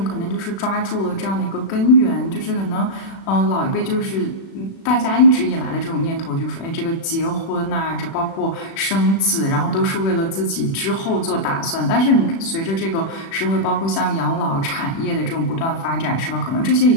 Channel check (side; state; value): right; late; 36 ms